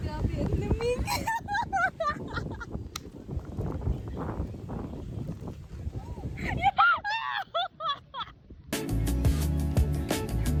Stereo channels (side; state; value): both; identical; correlation 1.00